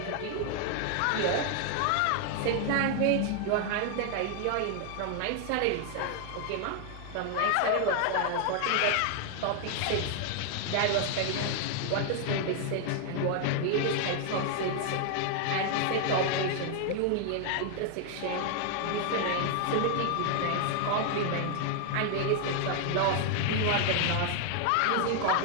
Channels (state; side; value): different; both; correlation 0.00